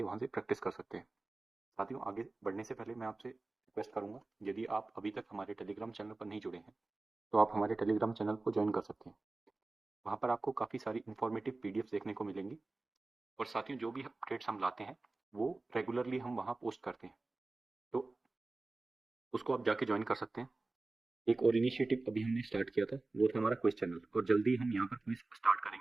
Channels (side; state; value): left; quieter; 3.3 dB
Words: वहाँ से प्रैक्टिस कर सकते हैं। साथियों, आगे बढ़ने से पहले मैं आपसे रिक्वेस्ट करूँगा, यदि आप अभी तक हमारे टेलीग्राम चैनल पर नहीं जुड़े हैं तो आप हमारे टेलीग्राम चैनल को ज्वाइन कर सकते हैं। वहाँ पर आपको काफ़ी सारी इंफॉर्मेटिव पीडीएफ देखने को मिलेंगी, और साथियों जो भी अपडेट्स हम लाते हैं वो रेगुलरली हम वहाँ पोस्ट करते हैं, तो उसको आप जाके ज्वाइन कर सकते हैं। एक और इनिशिएटिव अभी हमने स्टार्ट किया था, वो था हमारा क्विज चैनल, और जल्दी हम यहाँ पर क्विज स्टार्ट